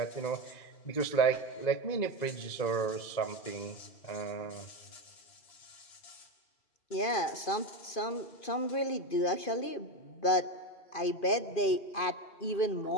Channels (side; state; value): right; late; 2.5 ms